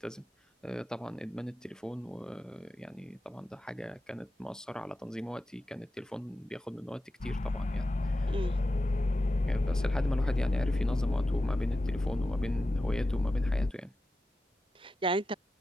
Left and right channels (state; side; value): normal; both; correlation 0.92